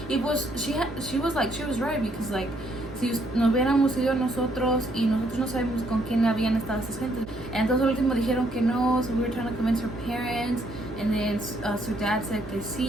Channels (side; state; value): right; noise; hum, 13 dB below the sound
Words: Y pues she was right, because, like, si nos hubiéramos ido nosotros y nosotros no sabemos con quién habían estado esas gentes. Entonces al último dijeron que no, so we were trying to convince her parents, and then su dad said que